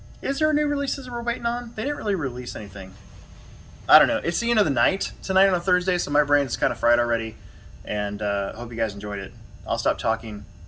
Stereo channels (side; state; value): both; identical; correlation 1.00